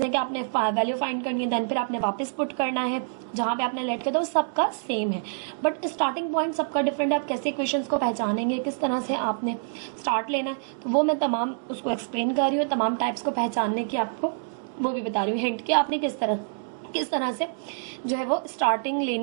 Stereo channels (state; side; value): silent; left; digital silence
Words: हैं कि आपने वैल्यू फाइंड करनी है, देन फिर आपने वापस पुट करना है जहाँ पे आपने लेट किया था, वो सबका सेम है, बट स्टार्टिंग पॉइंट सबका डिफरेंट है। आप कैसे इक्वेशंस को पहचानेंगे, किस तरह से आपने स्टार्ट लेना है, तो वो मैं तमाम उसको एक्सप्लेन कर रही हूँ। तमाम टाइप्स को पहचानने की आपको वो भी बता रही हूँ, हिंट कि आपने किस तरह से जो है वो स्टार्टिंग